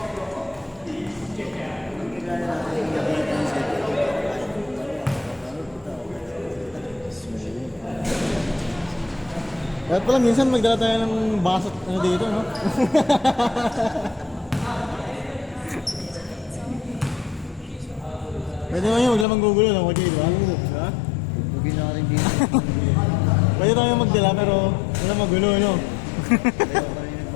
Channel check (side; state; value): right; drops out; at 19.2 s